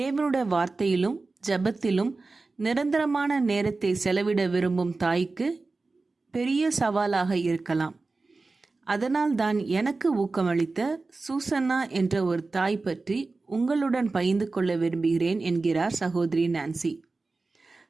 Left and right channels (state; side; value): quieter; left; 3.7 dB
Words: வார்த்தையிலும் ஜெபத்திலும் நிரந்தரமான நேரத்தை செலவிட விரும்பும் தாய்க்கு பெரிய சவாலாக இருக்கலாம். அதனால் தான் எனக்கு ஊக்கமளித்த சூசன்னா என்ற ஒரு தாய் பற்றி உங்களுடன் பகிர்ந்து கொள்ள விரும்புகிறேன் என்கிறார் சகோதரி நான்சி.